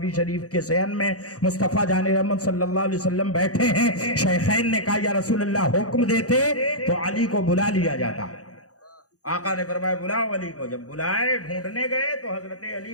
شریف کے صحن میں، مصطفیٰ جان رحمت صلی اللہ علیہ وسلم بیٹھے ہیں، شیخین نے کہا یا رسول اللہ حکم دیتے تو علی کو بلا لیا جاتا۔ آقا نے فرمایا بلاؤ علی کو۔ جب بلائے ڈھونڈنے گئے تو حضرت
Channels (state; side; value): late; right; 0.67 ms